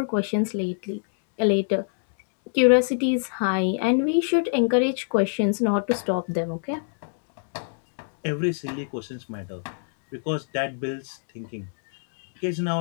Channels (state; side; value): silent; right; digital silence